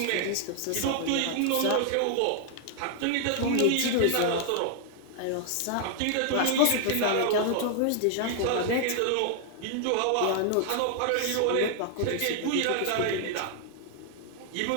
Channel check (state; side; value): different; both; correlation 0.00